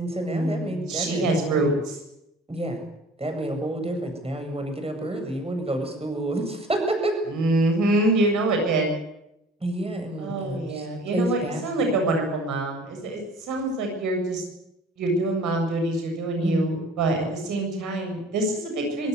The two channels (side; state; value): both; normal; correlation 0.47